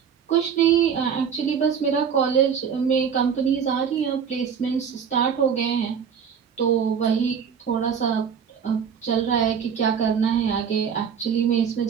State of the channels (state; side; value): quieter; left; 7.3 dB